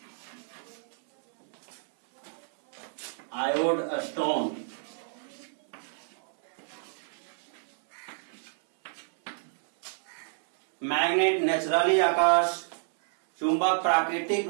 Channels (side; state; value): left; silent; 58 dB below the other